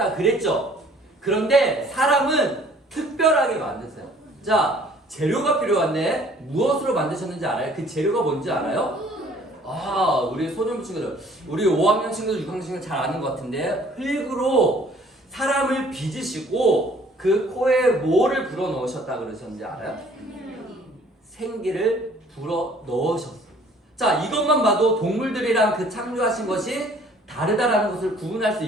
그랬죠. 그런데 사람은 특별하게 만드세요. 자, 재료가 필요한데 무엇으로 만드셨는지 알아요? 그 재료가 뭔지 알아요? 우리 소년부 친구들, 우리 5학년 친구들, 6학년 친구들 잘 아는 것 같은데 흙으로 사람을 빚으시고 그 코에 뭐를 불어 넣으셨다 그러셨는지 알아요? 생기를 불어 넣으셨어요. 자, 이것만 봐도 동물들이랑 그 창조하신 것이 다르다라는 것을 구분할 수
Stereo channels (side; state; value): both; normal; correlation 0.56